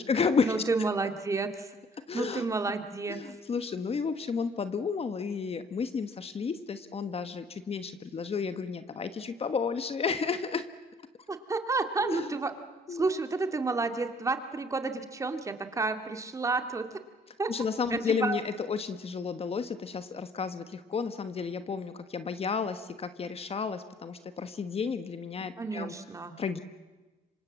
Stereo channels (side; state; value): both; normal; correlation 0.58